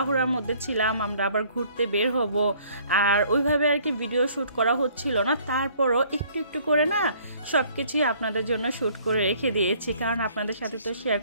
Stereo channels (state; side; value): inverted; both; correlation -0.58